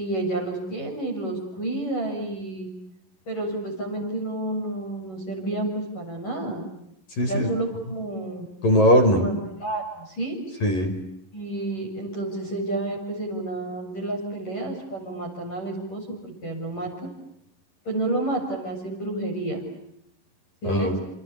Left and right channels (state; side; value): late; right; 11 ms